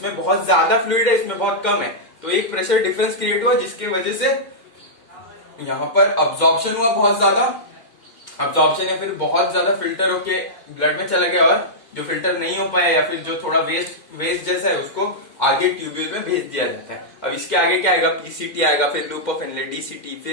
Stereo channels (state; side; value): late; right; 2.1 ms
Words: बहुत ज्यादा फ्लूइड है, इसमें बहुत कम है, तो एक प्रेशर डिफरेंस क्रिएट हुआ जिसकी वजह से यहाँ पर अब्जॉर्प्शन हुआ बहुत ज्यादा, अब्जॉर्प्शन या फिर बहुत ज्यादा फिल्टर होके ब्लड में चला गया, और जो फिल्टर नहीं हो पाया या फिर जो थोड़ा वेस्ट जैसा है उसको आगे ट्यूब्यूल में भेज दिया जाता है। अब इसके आगे क्या आएगा, पीसीटी आएगा, फिर लूप ऑफ इनलेट, डीसीटी,